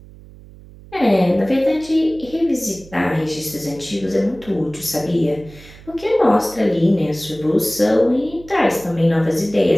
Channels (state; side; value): noise; right; hum, 20 dB below the sound